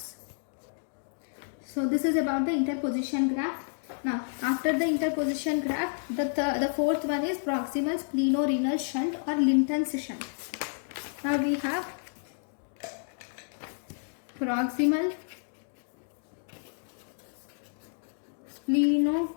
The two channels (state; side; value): silent; right; digital silence